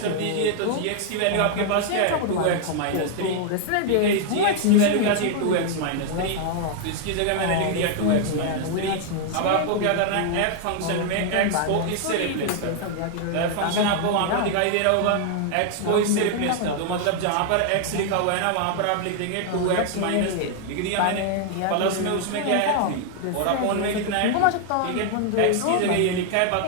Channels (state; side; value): different; both; correlation 0.00